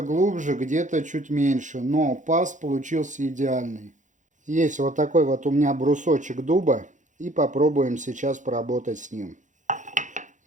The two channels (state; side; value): late; left; 0.36 ms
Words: глубже, где-то чуть меньше, но паз получился идеальный. Есть вот такой вот у меня брусочек дуба, и попробуем сейчас поработать с ним.